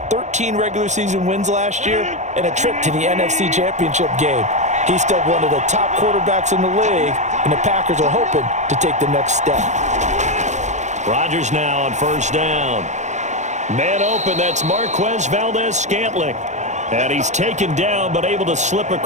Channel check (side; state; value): left; late; 0.34 ms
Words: 13 regular season wins last year and a trip to the NFC Championship game. He's still one of the top quarterbacks in the league, and the Packers are hoping to take the next step. Rodgers now on first down. Man open, that's Marquez Valdes-Scantling. And he's taken down, but able to slip